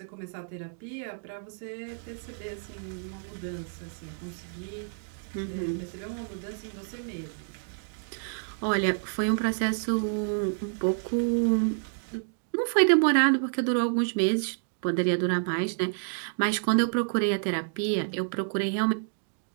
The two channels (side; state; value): left; silent; digital silence